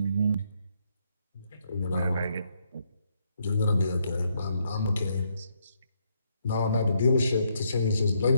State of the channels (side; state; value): both; inverted; correlation -0.75